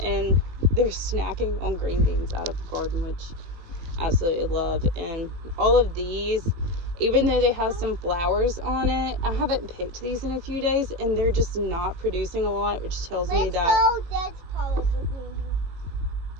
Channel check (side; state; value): left; late; 18 ms